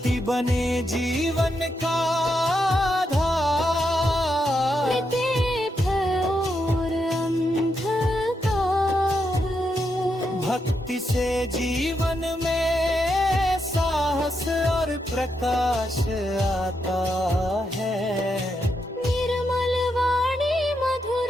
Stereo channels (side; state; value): both; normal; correlation 0.82